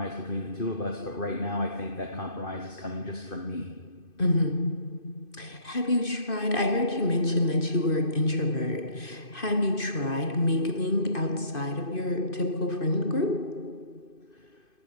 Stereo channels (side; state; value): right; late; 2.5 ms